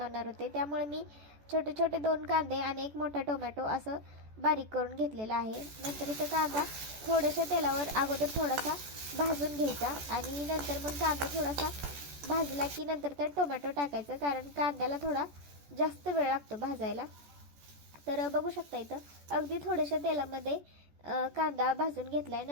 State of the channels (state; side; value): late; left; 14 ms